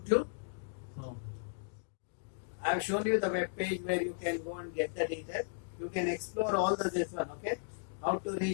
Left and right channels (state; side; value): silent; right; digital silence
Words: So I have shown you the web page where you can go and get the details. You can explore all this one. Okay, how to